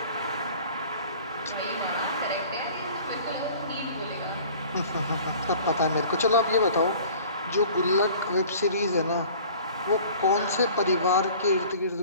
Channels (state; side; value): inverted; both; correlation -0.47